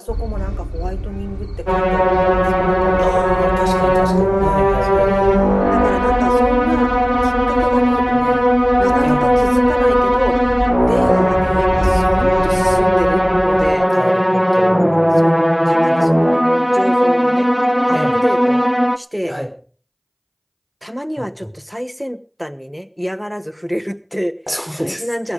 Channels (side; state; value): both; identical; correlation 1.00